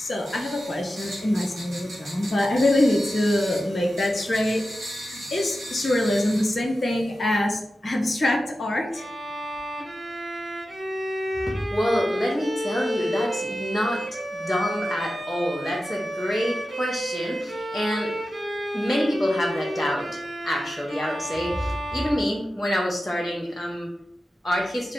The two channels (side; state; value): both; normal; correlation 0.93